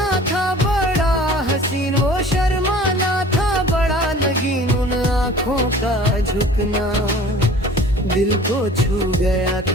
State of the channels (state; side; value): normal; both; correlation 0.46